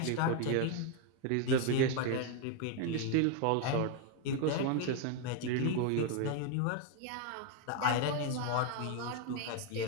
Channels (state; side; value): different; both; correlation 0.01